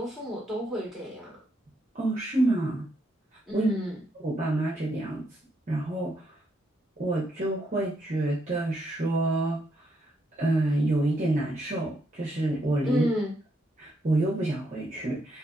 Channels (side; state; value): both; normal; correlation 0.77